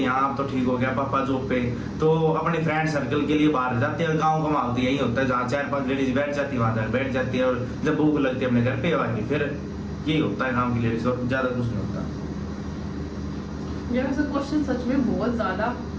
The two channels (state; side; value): identical; both; correlation 1.00